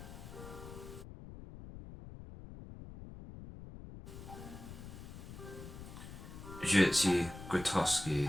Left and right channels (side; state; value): left; noise; rumble, 12 dB below the sound